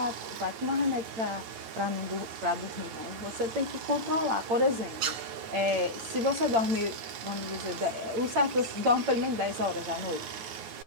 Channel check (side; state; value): left; late; 9.6 ms